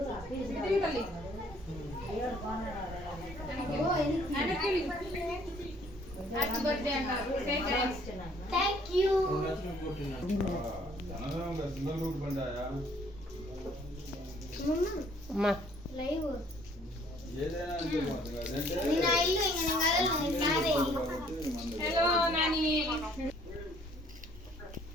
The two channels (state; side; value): normal; both; correlation 0.61